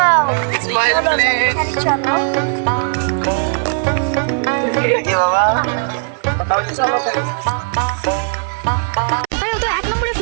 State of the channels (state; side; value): silent; left; 68 dB below the other